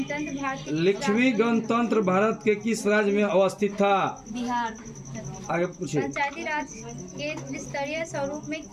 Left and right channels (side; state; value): both; identical; correlation 1.00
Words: लिच्छवी गणतंत्र भारत के किस राज्य में अवस्थित था? बिहार। आगे पूछिए। पंचायती राज के त्रिस्तरीय स्वरूप में